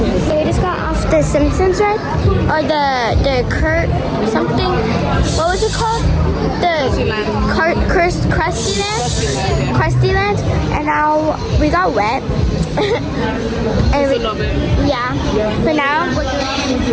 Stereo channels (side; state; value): both; identical; correlation 1.00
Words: So we just got off the Simpsons ride, or the Kurt something. What was it called? The Krusty Land. And now we got wet. And yeah. But now we're